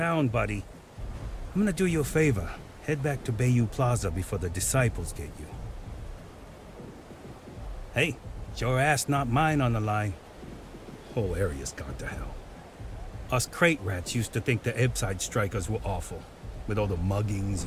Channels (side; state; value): both; identical; correlation 1.00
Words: buddy. I'm gonna do you a favor. Head back to Bayou Plaza before the disciples get you. Hey, it's your ass, not mine on the line. Whole area's gone to hell. Us crate rats used to think the Ebbside strikers were awful, with all the muggings